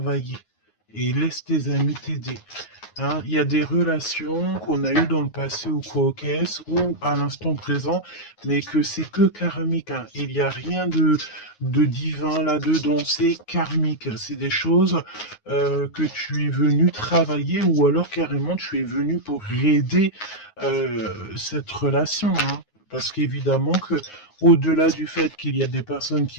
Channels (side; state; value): right; late; 9.5 ms